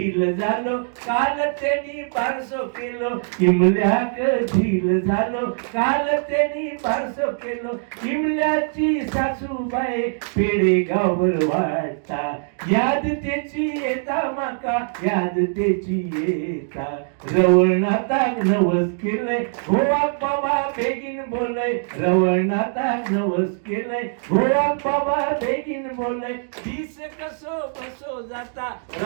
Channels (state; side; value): silent; left; digital silence